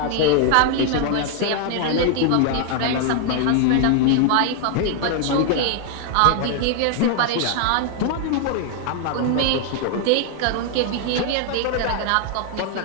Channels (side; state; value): both; different; correlation 0.00